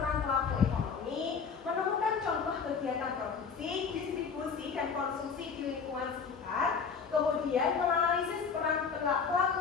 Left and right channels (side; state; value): right; quieter; 5.9 dB